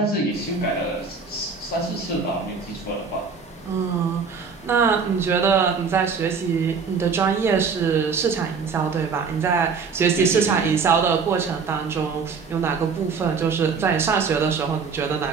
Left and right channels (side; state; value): left; quieter; 5.4 dB